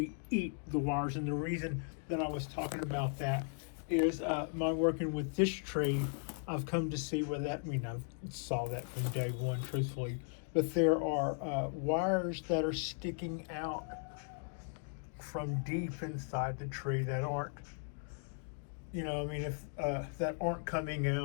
eat the wires. And the reason that I was talking about that is my working with this tree, I've come to see where that, I saw that from day one, truthfully, but there are wires that are sticking out from deep inside the tree that aren't, if that aren't coming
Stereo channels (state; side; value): silent; right; 53 dB below the other